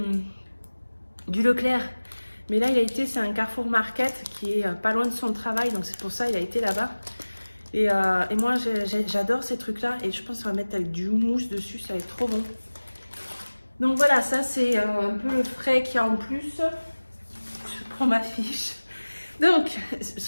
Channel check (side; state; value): both; inverted; correlation -1.00